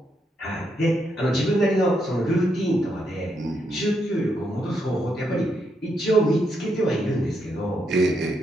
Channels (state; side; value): normal; both; correlation 0.79